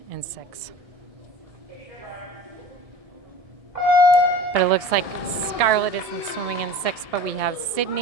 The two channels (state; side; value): late; left; 1.7 ms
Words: in 6. But it looks like Scarlett isn't swimming in 6, but we have